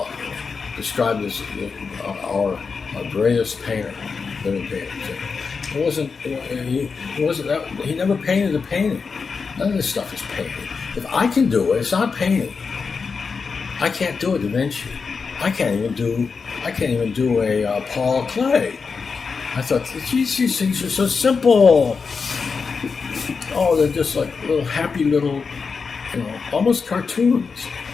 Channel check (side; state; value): right; quieter; 5.1 dB